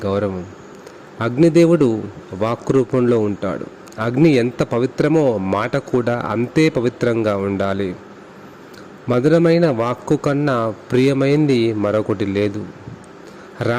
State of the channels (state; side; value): identical; both; correlation 1.00